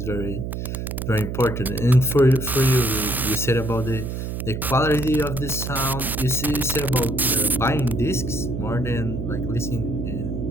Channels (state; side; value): noise; right; hum, 5 dB below the sound